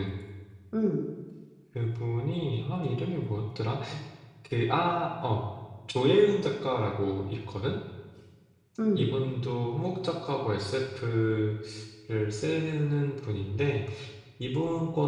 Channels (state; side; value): identical; both; correlation 1.00